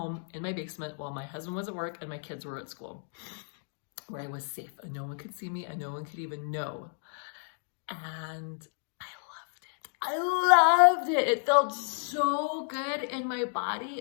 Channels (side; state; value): right; silent; digital silence